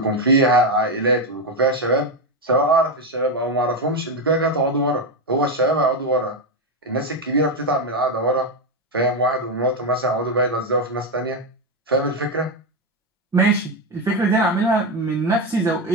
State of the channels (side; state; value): both; normal; correlation 0.09